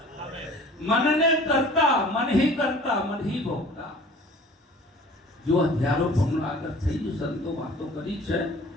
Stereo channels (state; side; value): normal; both; correlation 0.46